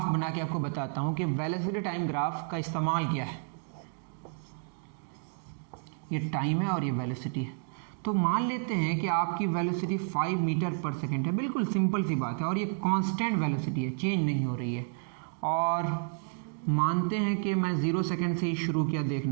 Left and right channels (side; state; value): left; silent; digital silence